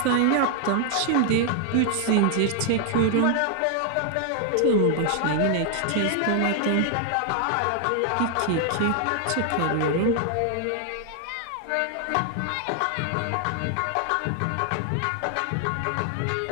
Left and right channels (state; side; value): different; both; correlation 0.00